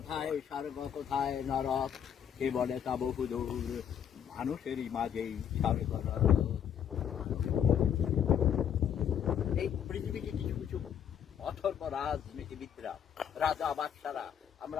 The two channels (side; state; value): right; quieter; 8.8 dB